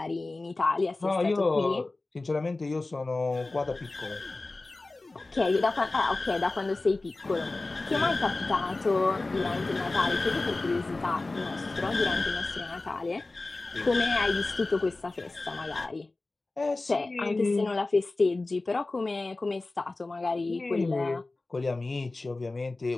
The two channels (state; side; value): quieter; right; 3.2 dB